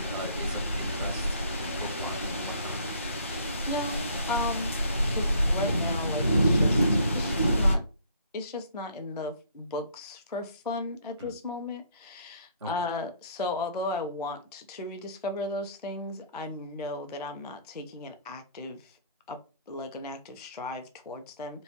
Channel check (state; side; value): inverted; both; correlation -0.60